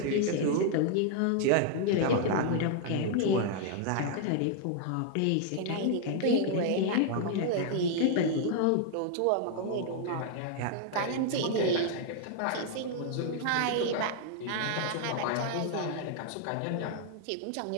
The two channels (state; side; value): different; both; correlation 0.00